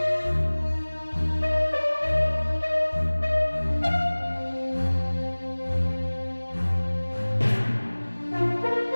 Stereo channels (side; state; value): both; inverted; correlation -1.00